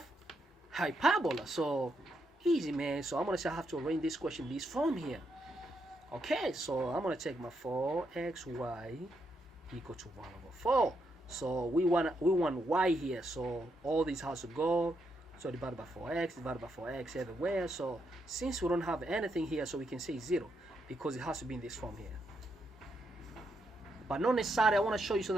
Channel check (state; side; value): normal; both; correlation 0.79